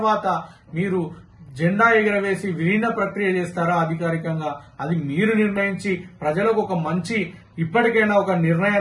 మీరు జెండా ఎగరవేసి విలీన ప్రక్రియ చేస్తారా అధికారికంగా, అది మీరు నిర్ణయించి ప్రజలకు ఒక మంచి ఇప్పటికైనా ఒక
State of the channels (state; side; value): identical; both; correlation 1.00